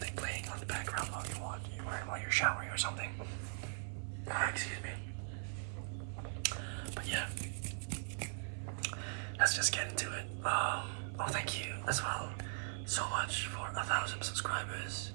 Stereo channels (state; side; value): silent; left; 51 dB below the other